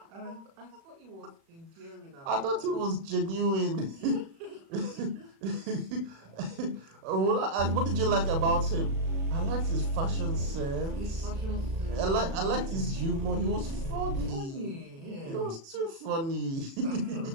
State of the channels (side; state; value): left; late; 36 ms